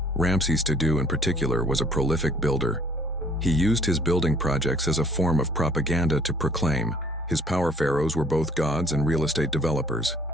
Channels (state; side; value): normal; both; correlation 0.58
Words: Ramses II in particular was a prolific builder. He used his building projects as a form of propaganda to proclaim his power. Pharaohs were both gods and real estate developers.